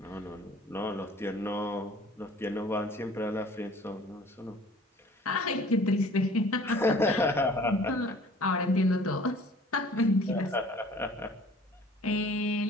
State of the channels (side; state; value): both; normal; correlation 0.50